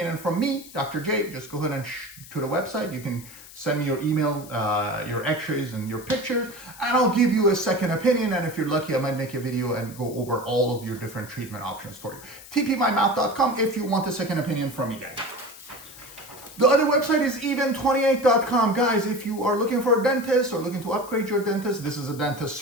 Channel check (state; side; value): noise; left; hiss, 18 dB below the sound